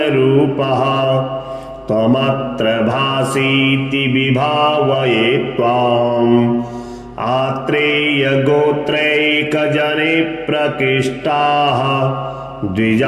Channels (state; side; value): identical; both; correlation 1.00